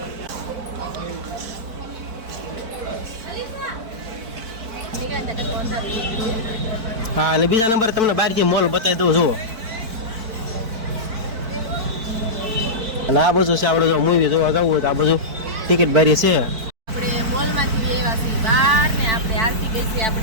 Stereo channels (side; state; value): left; late; 4.5 ms